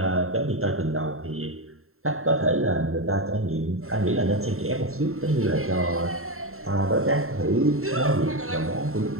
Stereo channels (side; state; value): left; late; 0.62 ms